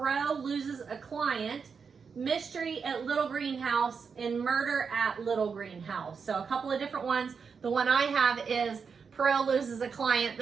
Loses a Client, Mystery at Little Green House, and Murder at Little Green House. So a couple of different ones. The one I have is Poirot Loses a Client.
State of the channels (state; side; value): quieter; left; 5.8 dB